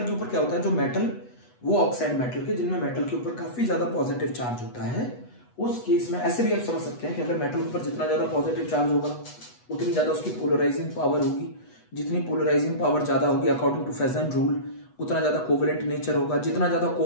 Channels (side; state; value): right; late; 8.2 ms